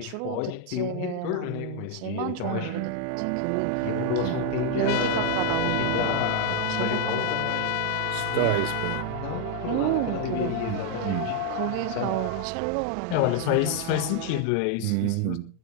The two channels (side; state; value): both; different; correlation 0.00